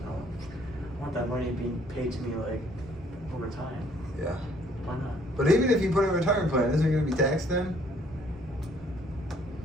want that money being paid to me like over time. Yeah. Why not? But even if you put in a retirement plan, isn't it going to be taxed then?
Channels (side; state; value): both; normal; correlation 0.62